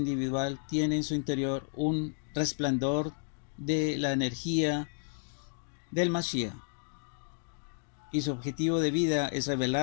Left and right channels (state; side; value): silent; right; 57 dB below the other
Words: tiene en su interior un resplandor de la energía del Mashiach. Y su objetivo de vida es